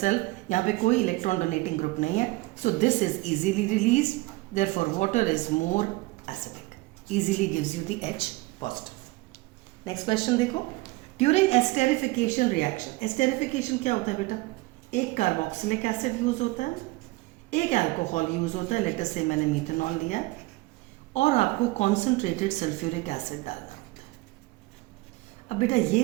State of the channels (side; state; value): left; quieter; 21.5 dB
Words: यहाँ पे कोई electron donating group नहीं है, so this is easily released, therefore water is more acidic, easily gives you the H positive। Next question देखो, during esterification reaction, esterification क्या होता है बेटा? एक कार्बोक्सिलिक एसिड यूज होता है, एक अल्कोहल यूज होता है, लेटर से मैंने मीथेनॉल लिया, और आपको कॉन्सेंट्रेटेड सल्फ्यूरिक एसिड डालना होता है। अब बेटा ये